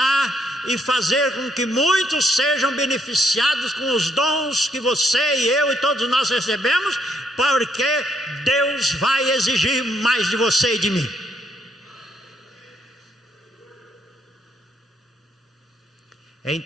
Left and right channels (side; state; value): both; normal; correlation 0.72